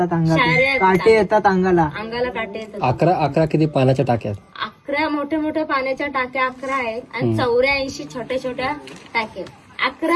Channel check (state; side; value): identical; both; correlation 1.00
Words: अंगाला, काटे येतात अंगाला काटे येतात. 11 किती पाण्याच्या टाक्यात? 11 मोठ्या मोठ्या पाण्याच्या टाक्या 11 आहेत आणि 84 छोट्या छोट्या टाक्या.